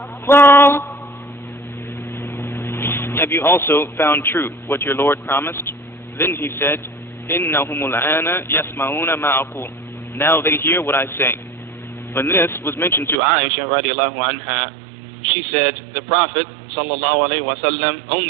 have you also found true what your Lord promised? Then he said, إِنَّهُمُ الْآنَ يَسْمَعُونَ مَا أَقُولُ. Now they hear what I say. When this was mentioned to Aisha radiallahu anha, she said, the Prophet sallallahu alayhi wa sallam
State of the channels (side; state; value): left; drops out; at 13.2 s